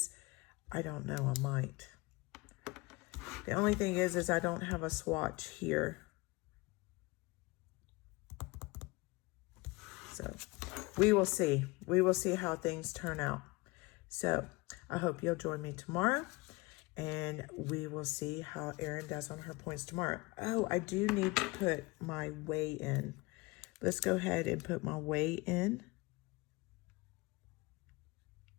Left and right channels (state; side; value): quieter; right; 24.1 dB